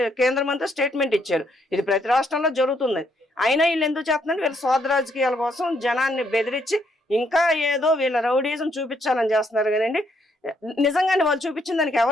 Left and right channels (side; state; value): both; normal; correlation 0.73